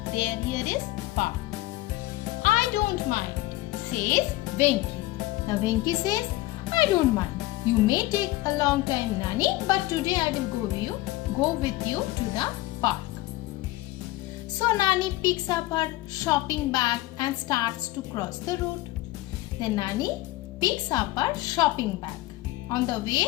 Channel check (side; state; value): right; quieter; 18.3 dB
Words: Here is park. I don't mind, says Venki. Now Venki says, I don't mind. You may take a long time, Nani, but today I will go with you to the park. So Nani picks up her shopping bag and starts to cross the road. Then Nani picks up her shopping bag. On the